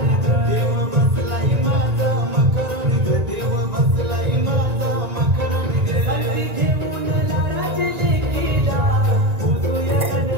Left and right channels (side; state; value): left; late; 1.9 ms